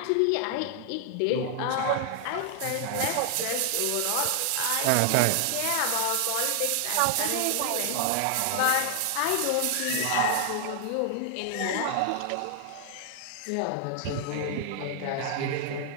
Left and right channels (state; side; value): different; both; correlation 0.00